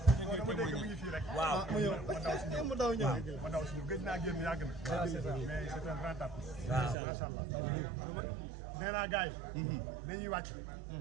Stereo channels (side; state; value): left; drops out; at 7.0 s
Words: waaw mu daw ñëw ma daw suñu gëj naa génn yàgg na mais c'est un grand artiste macha allah nee naa gars yi dañuy wàcc